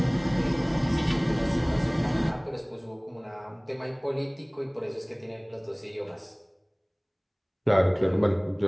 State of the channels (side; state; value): both; identical; correlation 1.00